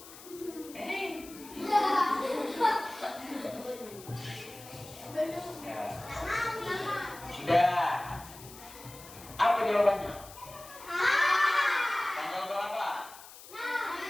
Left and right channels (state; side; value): noise; left; hiss, 17 dB below the sound